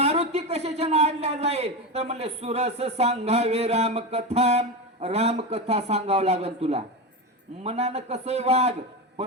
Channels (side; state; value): both; normal; correlation 0.18